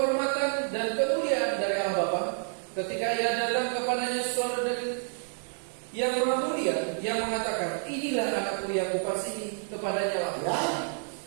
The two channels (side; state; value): left; silent; 58 dB below the other